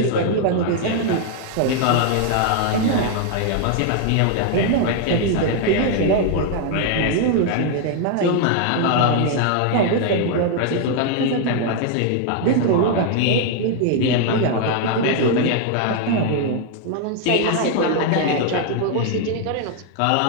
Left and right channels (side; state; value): both; different; correlation 0.00